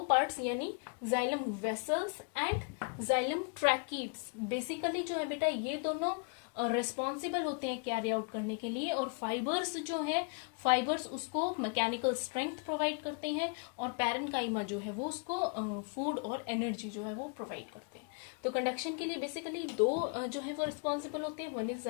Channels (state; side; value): quieter; right; 36.9 dB